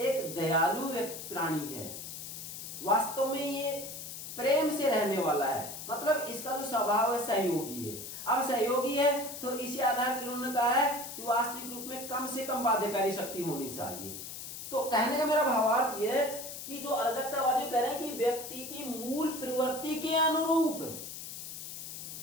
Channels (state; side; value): noise; left; hiss, 9 dB below the sound